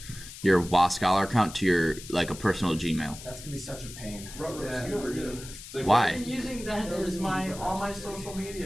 your WaScholar account to your a personal Gmail. That's gonna be such a pain. Like, Why? I'm using that as all my social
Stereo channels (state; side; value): noise; left; hiss, 14 dB below the sound